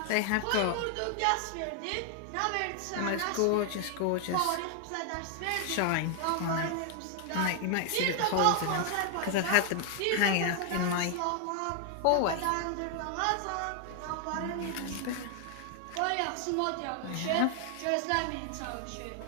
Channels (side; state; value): both; different; correlation 0.00